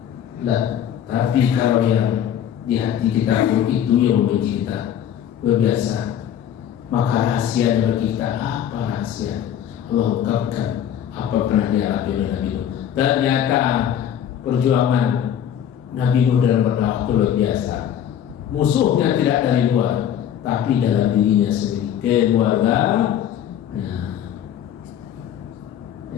Nah, tapi kalau yang di hati kita itu yang membenci kita, luar biasa. Maka rahasia bagi kita apa rahasia? Allah ungkapkan apa pernah dialami oleh Nabi Nuh. Ternyata perjuangan Nabi Nuh dalam berdakwah itu luar biasa. Musuhnya tidak dari luar, tapi dalam dirinya sendiri, keluarga.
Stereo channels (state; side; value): quieter; right; 9.8 dB